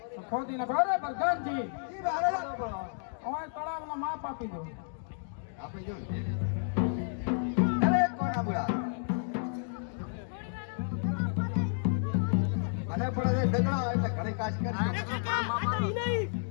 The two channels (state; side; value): silent; right; digital silence